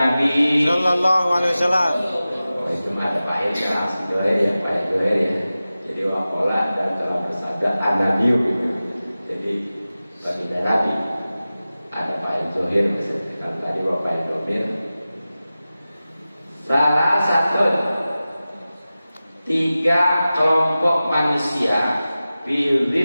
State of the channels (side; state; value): both; inverted; correlation -0.95